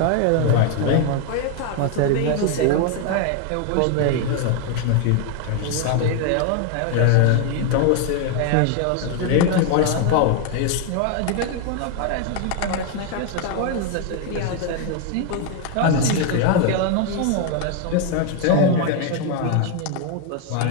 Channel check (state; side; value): different; both; correlation 0.01